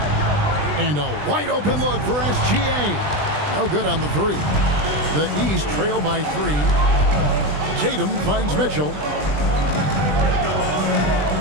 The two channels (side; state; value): left; late; 20 ms